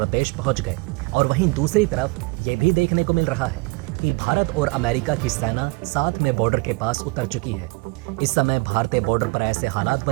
पहुंच गए और वहीं दूसरी तरफ ये भी देखने को मिल रहा है कि भारत और अमेरिका की सेना साथ में बॉर्डर के पास उतर चुकी है। इस समय भारतीय बॉर्डर पर ऐसे हालात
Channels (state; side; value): quieter; left; 27.8 dB